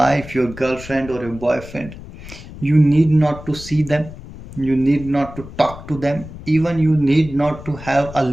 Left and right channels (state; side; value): noise; left; rumble, 15 dB below the sound